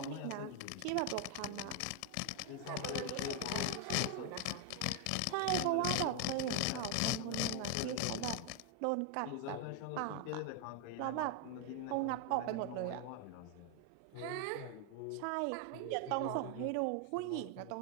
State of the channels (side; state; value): both; different; correlation 0.00